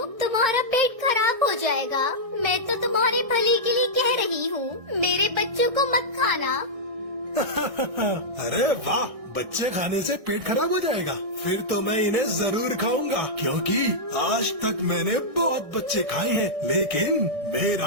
तुम्हारा पेट खराब हो जाएगा। मैं तो तुम्हारे भले के लिए कह रही हूँ, मेरे बच्चों को मत खाना। अरे वाह, बच्चे खाने से पेट खराब हो जाएगा? फिर तो मैं इन्हें जरूर खाऊंगा, क्योंकि आज तक मैंने बहुत बच्चे खाए हैं, लेकिन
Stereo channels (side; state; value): left; late; 1.6 ms